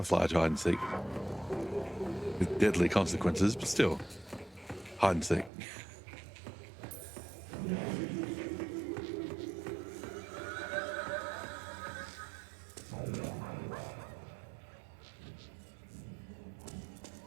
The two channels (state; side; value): drops out; left; at 5.5 s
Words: hide and seek. With deadly consequences, but still. Hide and seek.